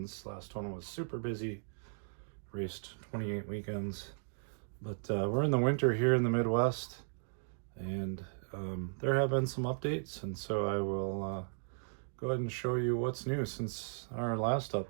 Last one was super busy. Raced 28 weekends. But we're in the winter here in the Midwest, and there have been some updates, and so I will go ahead and show you what's new since our last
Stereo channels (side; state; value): left; silent; digital silence